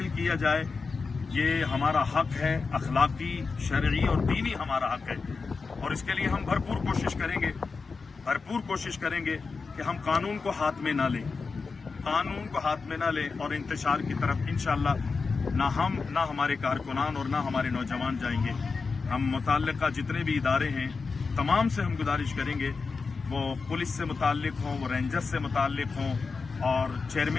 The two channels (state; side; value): quieter; right; 4.6 dB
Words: किया जाए। ये हमारा हक़ है, अखलाकी, शरई और दीनी हमारा हक़ है और इसके लिए हम भरपूर कोशिश करेंगे कि हम कानून को हाथ में ना लें और इंतशार की तरफ इंशाअल्लाह ना हमारे कारकुनान और ना हमारे नौजवान जाएंगे। हम मुतल्लिक़ा जितने भी इदारे हैं तमाम से हम गुजारिश करेंगे, वो पुलिस से मुताल्लिक़ हों, वो रेंजर्स से मुताल्लिक़ हों और